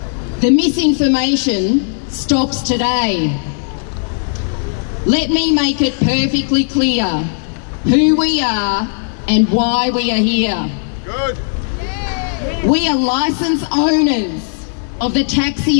The misinformation stops today. Let me make it perfectly clear who we are and why we are here. Good. We are licence owners of the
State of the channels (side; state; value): right; silent; digital silence